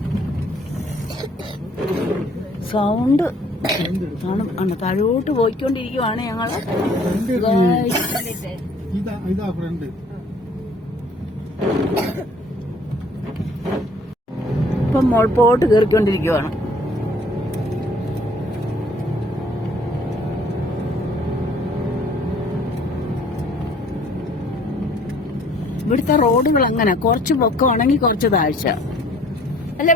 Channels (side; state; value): both; normal; correlation 0.57